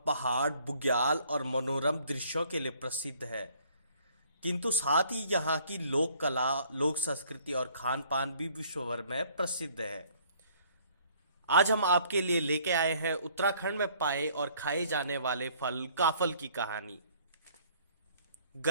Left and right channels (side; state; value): both; inverted; correlation -0.60